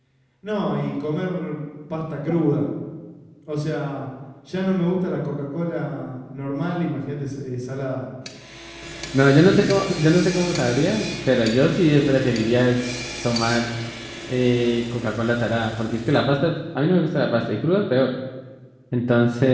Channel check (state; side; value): identical; both; correlation 1.00